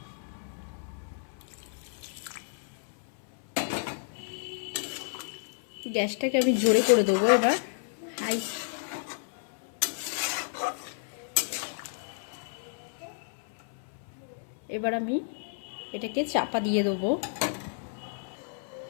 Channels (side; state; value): right; silent; 57 dB below the other